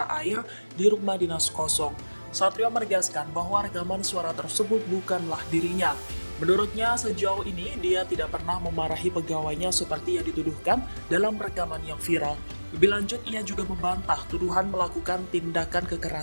Air di rumah dinas kosong. Satrio menegaskan bahwa rekaman suara tersebut bukanlah dirinya. Menurutnya, sejauh ini dia tidak pernah memarahi pegawainya seperti yang dituduhkan dalam rekaman yang viral. Lebih lanjut, ia juga membantah tuduhan melakukan tindakan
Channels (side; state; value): both; inverted; correlation -1.00